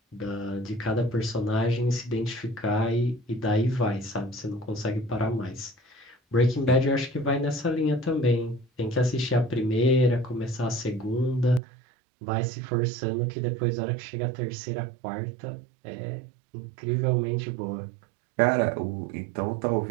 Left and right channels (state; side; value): drops out; left; at 11.6 s